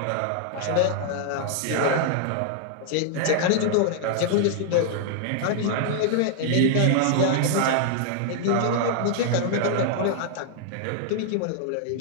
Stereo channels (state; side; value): different; both; correlation -0.01